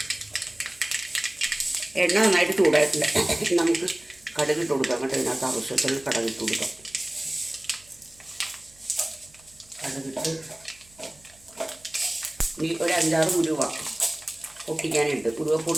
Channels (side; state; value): right; noise; hum, 28 dB below the sound